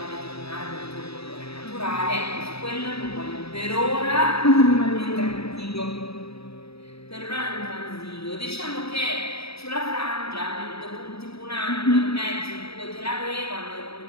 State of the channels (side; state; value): right; late; 0.77 ms